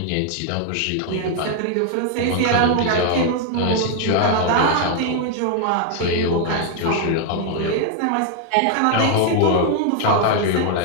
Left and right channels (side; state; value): both; different; correlation 0.00